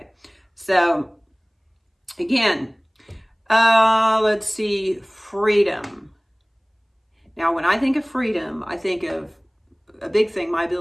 so again, let's see, freedom. Now, when I think of freedom, I think of a big thing,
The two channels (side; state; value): both; identical; correlation 1.00